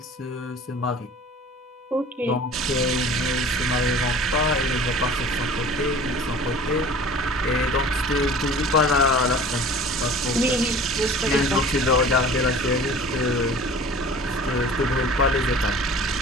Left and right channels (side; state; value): both; normal; correlation 0.44